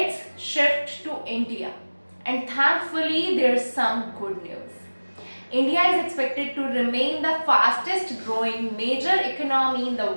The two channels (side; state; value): both; inverted; correlation -1.00